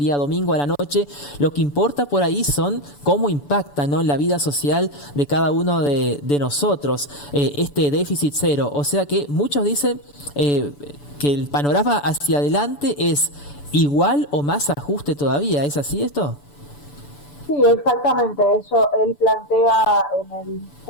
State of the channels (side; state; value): right; late; 6.9 ms